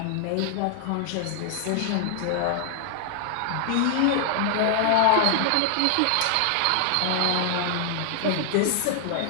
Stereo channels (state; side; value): different; both; correlation 0.00